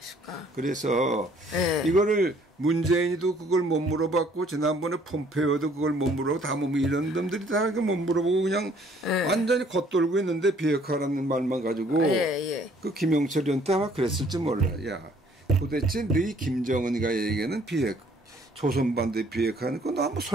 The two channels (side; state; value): both; normal; correlation 0.60